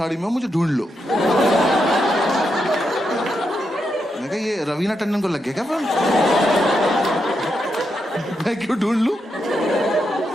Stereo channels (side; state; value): both; normal; correlation 0.83